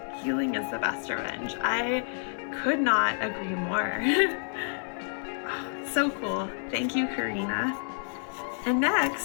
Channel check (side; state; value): right; silent; 56 dB below the other